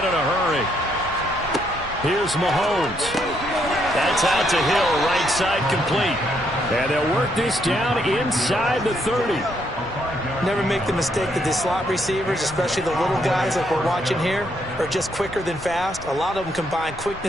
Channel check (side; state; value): both; normal; correlation 0.74